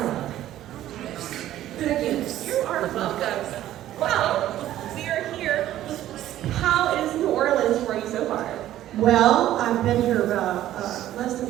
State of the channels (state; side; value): quieter; left; 13.2 dB